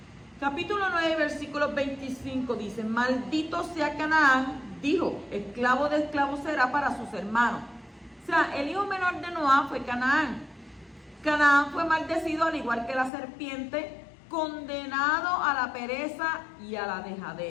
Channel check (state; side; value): drops out; right; at 13.1 s